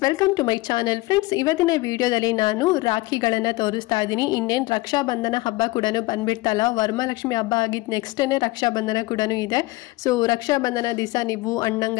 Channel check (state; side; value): quieter; right; 20.9 dB